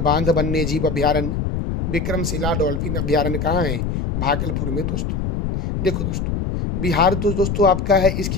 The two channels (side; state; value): left; noise; rumble, 2 dB below the sound